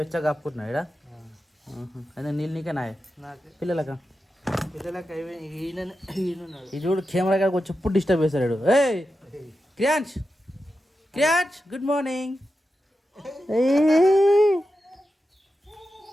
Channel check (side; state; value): both; normal; correlation 0.90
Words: వెచ్చగా కప్పుకుంటున్నావు ఇక్కడ అదే నీళ్ళు నీకే నాయ పిల్లలకా ఈ చూడు కెమెరా కాడికి వచ్చి ఎప్పుడు డిస్టర్బ్ చేస్తాడు ఏయ్ క్రియాంష్ క్రియాంష్ గుడ్ మార్నింగ్